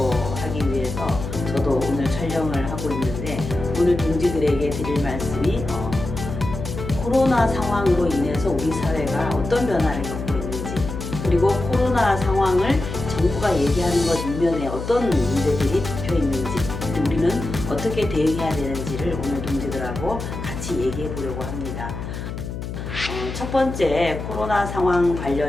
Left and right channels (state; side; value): noise; left; hum, 7 dB below the sound